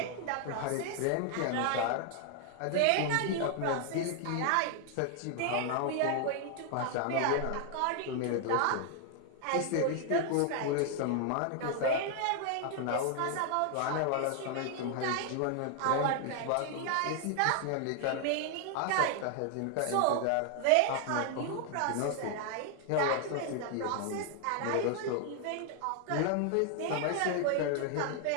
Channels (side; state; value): both; different; correlation 0.00